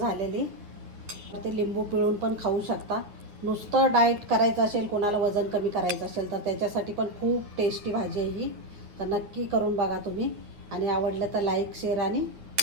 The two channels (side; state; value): left; late; 9.9 ms